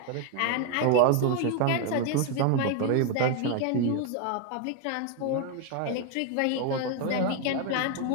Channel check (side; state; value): both; different; correlation 0.01